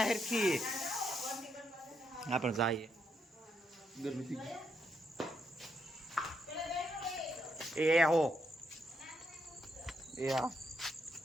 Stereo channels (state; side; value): normal; both; correlation 0.78